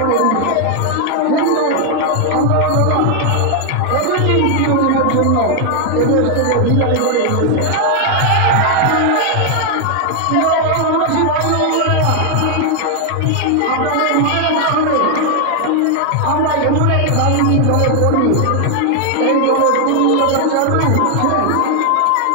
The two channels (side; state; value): both; different; correlation 0.00